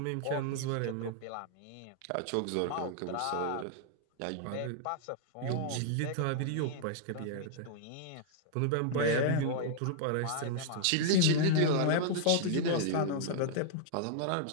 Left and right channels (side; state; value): both; different; correlation -0.01